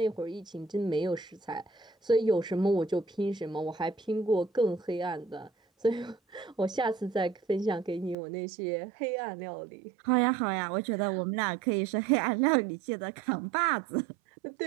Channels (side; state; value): left; drops out; at 8.2 s